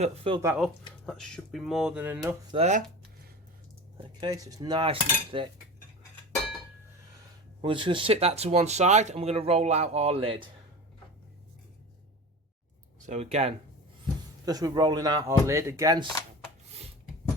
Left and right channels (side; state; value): both; normal; correlation 0.32